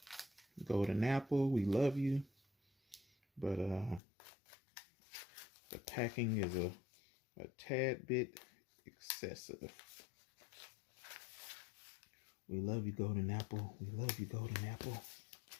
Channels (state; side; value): drops out; right; at 4.0 s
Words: Golden Apple, we love you, but the packing is a tad bit excessive. We love you, Golden Apple. We love you, Golden Apple.